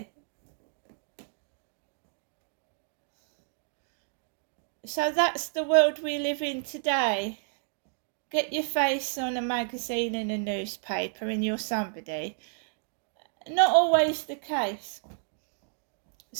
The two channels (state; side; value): silent; left; digital silence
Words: So that's the world we live in today. Get your face on a magazine and a newspaper and you're somebody. Not always the case.